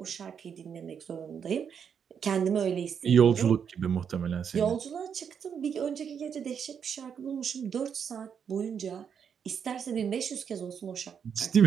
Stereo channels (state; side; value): quieter; left; 7.4 dB